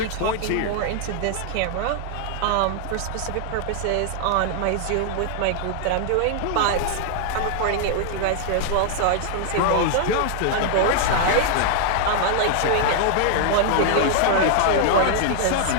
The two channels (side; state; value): both; different; correlation 0.00